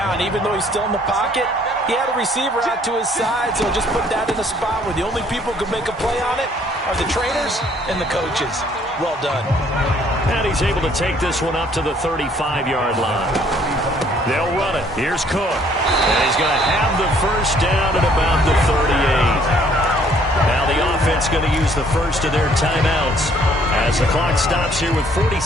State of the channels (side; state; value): both; normal; correlation 0.62